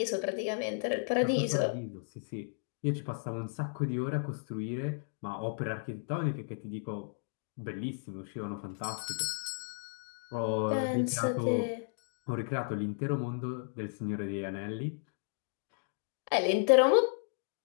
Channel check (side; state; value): right; silent; digital silence